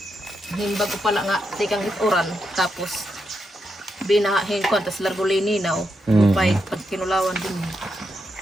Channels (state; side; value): normal; both; correlation 0.83